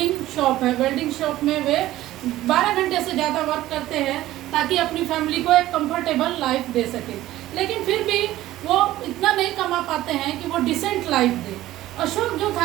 शॉप है। वेल्डिंग शॉप में वे 12 घंटे से ज़्यादा वर्क करते हैं ताकि अपनी फैमिली को एक कंफर्टेबल लाइफ दे सके, लेकिन फिर भी वो इतना नहीं कमा पाते हैं कि वो डिसेंट लाइफ दे। अशोक जो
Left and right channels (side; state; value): left; quieter; 15.2 dB